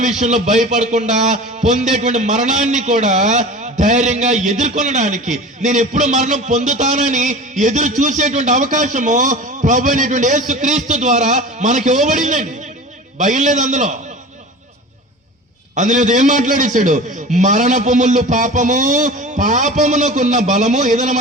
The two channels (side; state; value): both; normal; correlation 0.35